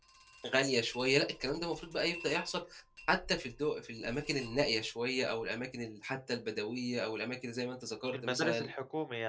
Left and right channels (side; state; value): both; identical; correlation 1.00